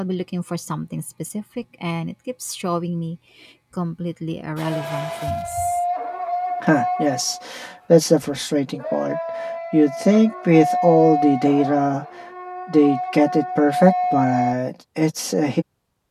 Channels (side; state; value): both; identical; correlation 1.00